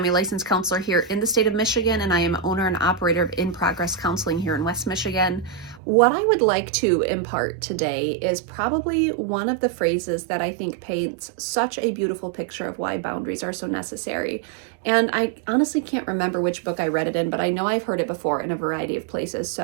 a licensed counselor here in the state of Michigan, and I am owner and operator of In Progress Counseling here in West Michigan. What I would like to impart today is probably one of the phrases that I think paints such a beautiful picture of why boundaries are so necessary. And I honestly can't remember which book I read it in, but I know I've heard it before in a variety of places.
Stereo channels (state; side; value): drops out; left; at 5.8 s